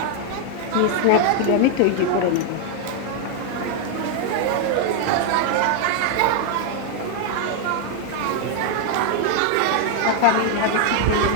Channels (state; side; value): different; both; correlation 0.01